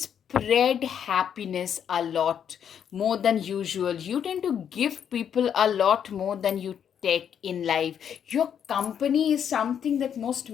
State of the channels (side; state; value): right; quieter; 8.5 dB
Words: happiness a lot more than usual. You tend to give people a lot more than you take in life. Your company is something that most